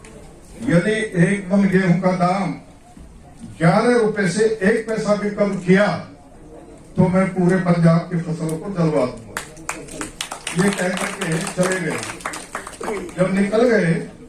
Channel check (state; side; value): identical; both; correlation 1.00